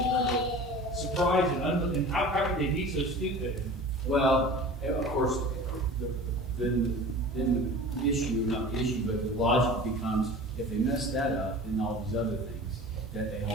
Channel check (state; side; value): normal; both; correlation 0.38